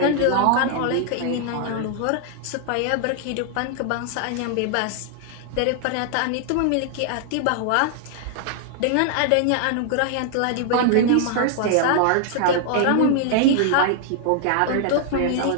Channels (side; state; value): both; different; correlation 0.00